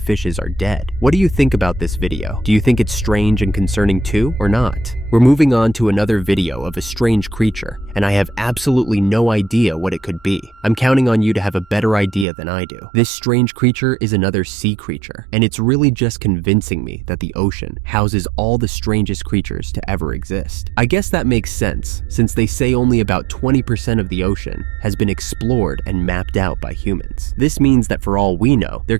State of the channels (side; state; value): left; drops out; at 12.2 s